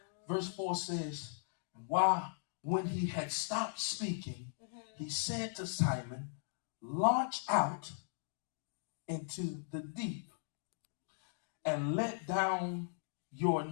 Verse 4 says, when he had stopped speaking, he said to Simon, launch out into the deep and let down your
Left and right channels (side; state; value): right; silent; digital silence